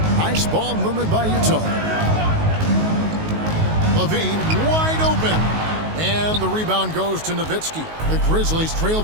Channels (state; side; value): late; left; 19 ms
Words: Nice ball movement by Utah. Levine wide open. And the rebound goes to Nowitzki. The Grizzlies trail